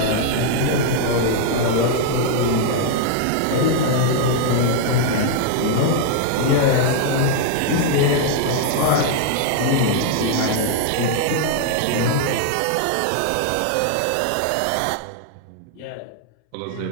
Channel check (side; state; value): both; different; correlation -0.01